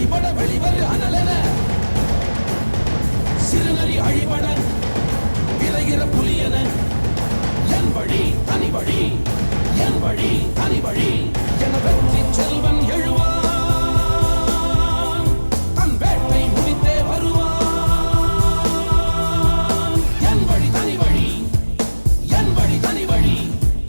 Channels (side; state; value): both; inverted; correlation -1.00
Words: வெளிவரு அனலென சிறுநரி அழிபட விரைகிற புலியென என் வழி தனி வழி என் வழி தனி வழி என வெற்றி செல்வன் எழுவான் தன் வேட்டை முடித்தே வருவான் என் வழி தனி வழி என் வழி தனி வழி